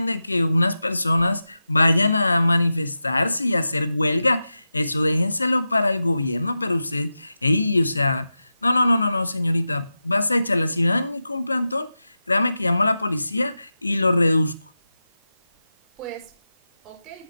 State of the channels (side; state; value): both; inverted; correlation -0.93